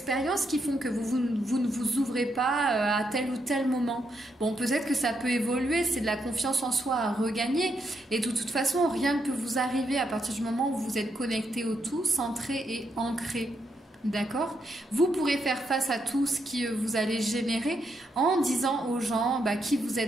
qui font que vous ne vous ouvrez pas à tel ou tel moment. Bon, peut-être que ça peut évoluer, c'est de la confiance en soi à regagner. Et de toute façon, rien ne peut vous arriver à partir du moment où vous êtes connecté au tout, centré et ancré. D'accord? Vous pourrez faire face à tout ce que vous allez générer en disant aux gens bah, qui vous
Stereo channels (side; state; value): both; normal; correlation 0.79